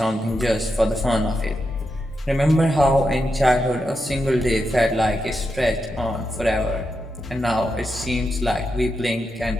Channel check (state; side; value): normal; both; correlation 0.86